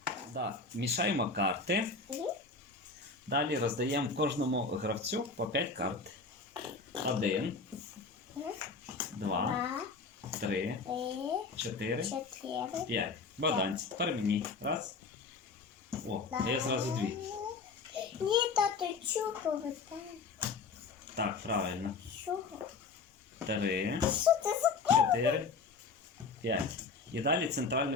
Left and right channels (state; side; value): quieter; right; 4.5 dB